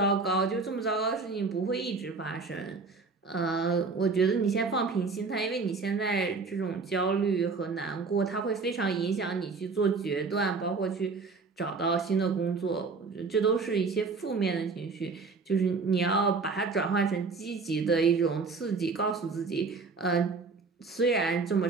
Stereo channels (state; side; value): quieter; left; 4.4 dB